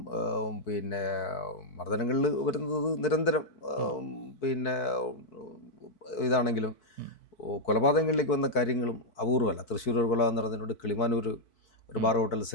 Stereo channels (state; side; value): late; right; 4.6 ms